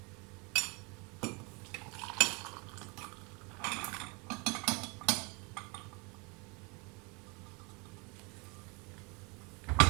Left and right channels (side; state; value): left; quieter; 29.7 dB